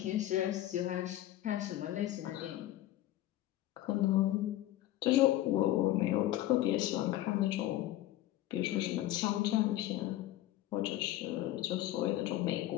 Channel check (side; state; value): right; quieter; 14.5 dB